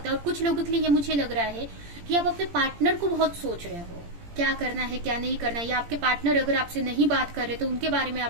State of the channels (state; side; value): late; left; 17 ms